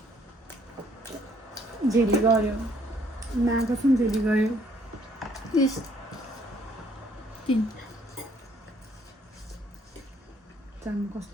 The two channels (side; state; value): both; normal; correlation 0.64